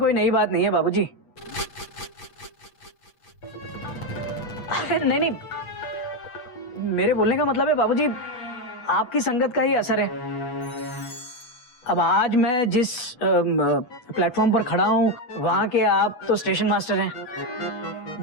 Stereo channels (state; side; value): late; right; 8.3 ms